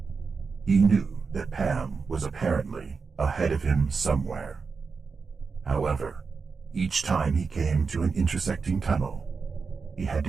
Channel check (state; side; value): quieter; left; 5.0 dB